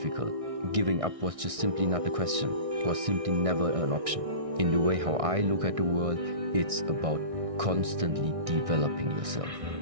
Giving up was just simply not a question, was simply never an option. In the way how I look at the world, it's about constantly developing yourself.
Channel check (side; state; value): left; late; 1.6 ms